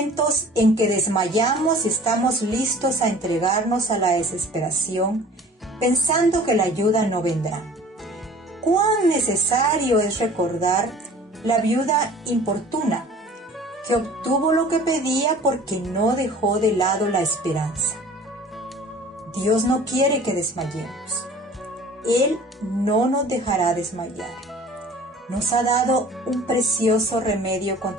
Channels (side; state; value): both; normal; correlation 0.47